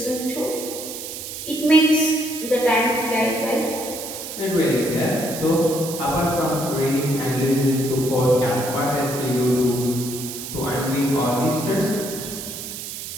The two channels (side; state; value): right; noise; hiss, 9 dB below the sound